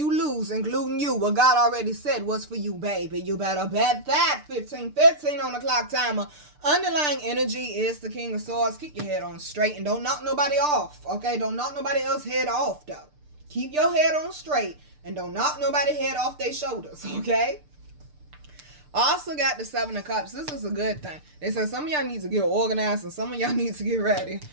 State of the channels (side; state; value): left; late; 6.7 ms